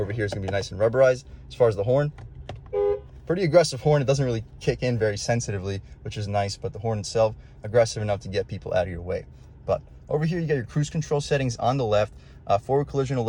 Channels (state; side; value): identical; both; correlation 1.00